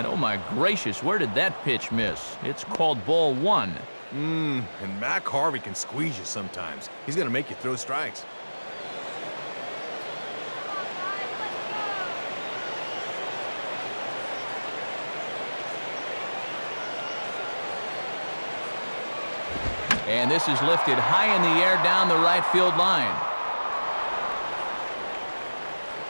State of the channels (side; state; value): both; inverted; correlation -1.00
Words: oh my gracious, where did that pitch miss? It's called ball 1. And Mac Harvey can squeeze you sometimes. He's going to make you throw strikes. And this is lifted high in the air down the right field line.